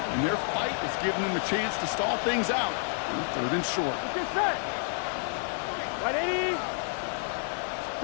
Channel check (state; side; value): silent; right; 58 dB below the other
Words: their fight is giving them a chance to stall things out. 3rd and short. Get set. Ready?